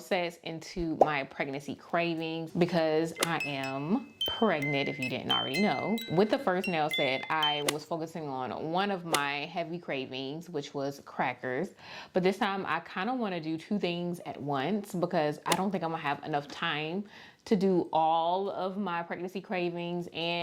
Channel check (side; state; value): both; identical; correlation 1.00